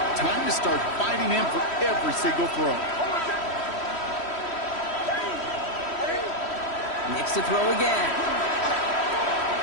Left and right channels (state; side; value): late; right; 3.1 ms